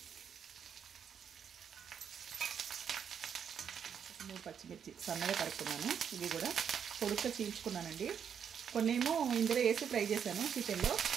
3 పచ్చిమిర్చి సన్నగా తరుక్కున్నాను. ఇవి కూడా పొడుగ్గా చీల్చుకున్నానండి. కొన్నేమో ఇందులో వేసి ఫ్రై చేశాను చికెన్లో.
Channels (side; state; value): left; quieter; 7.8 dB